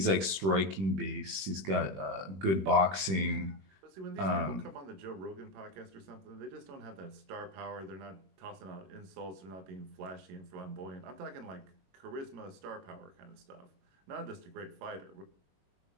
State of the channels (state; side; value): late; left; 21 ms